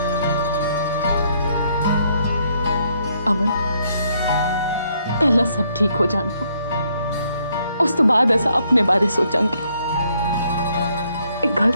अमन, पहला सब ठीक हो जान दो, उस तो बाद असा अपने बारे सोचांगे। एक गल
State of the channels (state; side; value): inverted; both; correlation -0.71